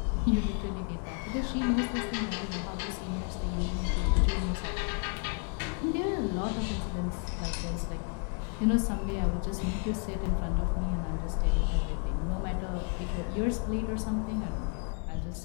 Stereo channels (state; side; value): quieter; right; 39.5 dB